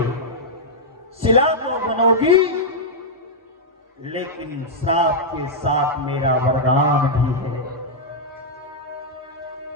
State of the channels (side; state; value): both; normal; correlation -0.07